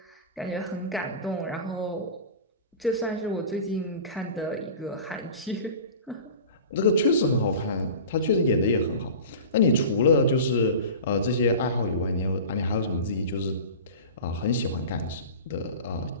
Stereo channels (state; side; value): inverted; both; correlation -0.34